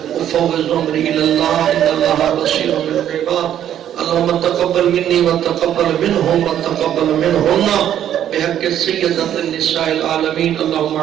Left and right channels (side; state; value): left; quieter; 10.6 dB